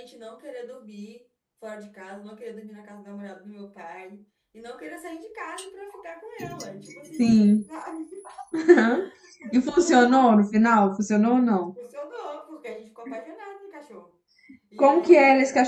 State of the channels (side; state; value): both; identical; correlation 1.00